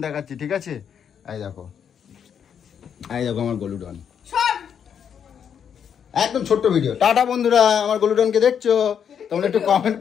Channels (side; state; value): right; quieter; 8.0 dB